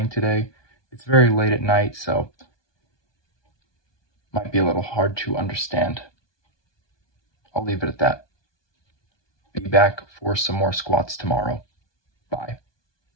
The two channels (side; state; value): right; late; 1.2 ms